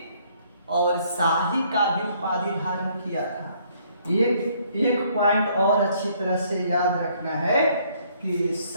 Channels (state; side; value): inverted; both; correlation -0.65